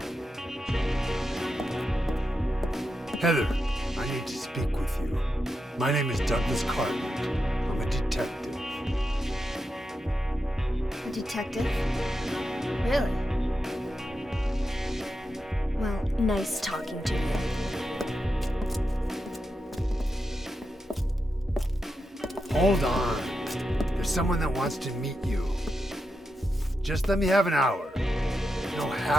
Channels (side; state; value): both; normal; correlation 0.88